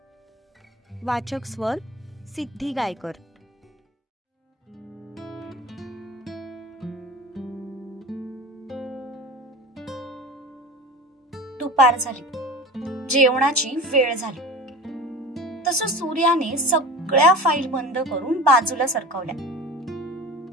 वाचक स्वर सिद्धी गायकर. दुपार झाली, जेवणाची वेळ झाली. तसं सूर्याने सगळ्या फाईल बंद करून बाजूला सरकवल्या.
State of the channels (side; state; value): both; normal; correlation 0.34